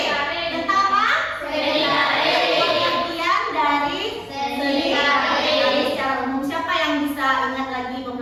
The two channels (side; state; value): both; identical; correlation 1.00